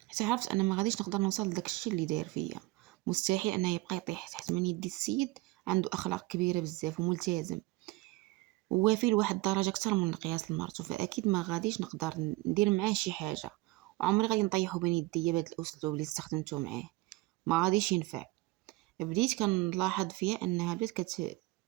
حتى عرفت انا ما غاديش نقدر نوصل لداك الشيء اللي دار فيا. مستحيل انه يبقى يطيح تحت من يدي. السيد عنده اخلاق كبيره بزاف وملتزم ووافي لواحد الدرجه اكثر من القياس لمرته، فاكيد ما غاديش نقدر ندير معاه شي حاجه. وعمري غادي نطيحو بين يديا بهذا الاسلوب اللي استخدمته معاه، ما غاديش ينفع. بديت كنلاحظ فيها انها بدات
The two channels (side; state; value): left; quieter; 20.5 dB